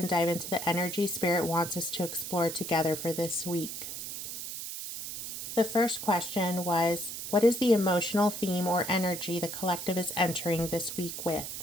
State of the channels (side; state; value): right; noise; hiss, 7 dB below the sound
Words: dive into the energy Spirit wants us to explore together for this week. The first question was, what is the emotional theme or energy the collective is entering this week